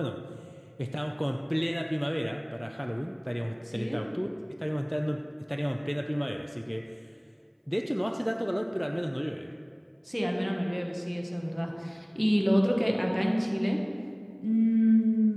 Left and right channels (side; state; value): both; identical; correlation 1.00